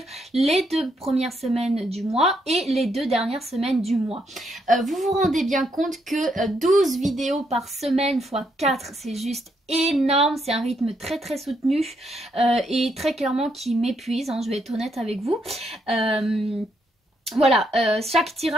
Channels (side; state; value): both; normal; correlation 0.76